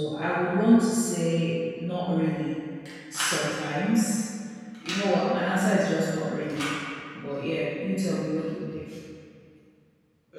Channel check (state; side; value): identical; both; correlation 1.00